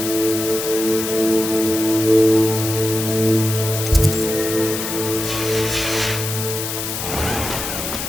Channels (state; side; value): noise; left; hiss, 5 dB below the sound